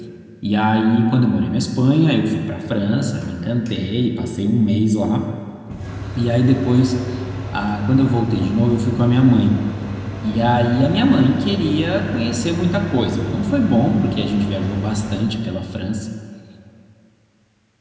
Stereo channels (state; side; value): identical; both; correlation 1.00